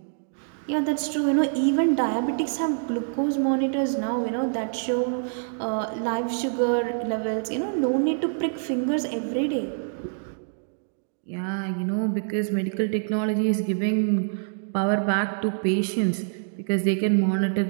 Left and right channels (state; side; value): silent; left; digital silence